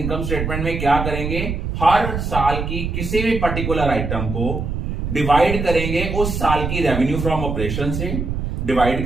स्टेटमेंट में क्या करेंगे? हर साल की किसी भी पर्टिकुलर आइटम को डिवाइड करेंगे, उस साल की रेवेन्यू फ्रॉम ऑपरेशन से डिवाइड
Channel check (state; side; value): noise; right; rumble, 3 dB below the sound